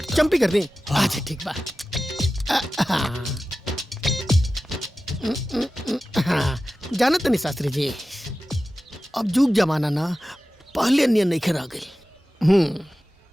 चंपी कर दे। अच्छा ठीक बा। जानत नहीं शास्त्री जी, अब जुग जमाना ना पहले नियन नहीं खरा गई।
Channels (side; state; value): both; normal; correlation 0.95